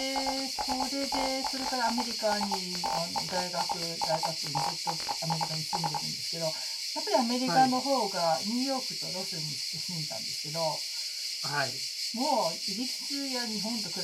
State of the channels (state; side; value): identical; both; correlation 1.00